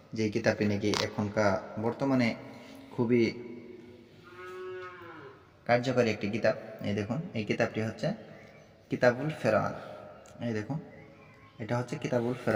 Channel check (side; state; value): both; identical; correlation 1.00